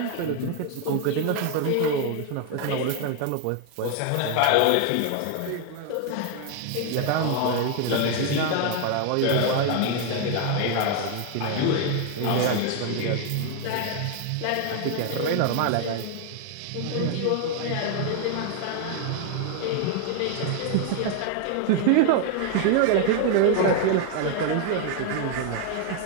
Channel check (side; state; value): both; different; correlation 0.00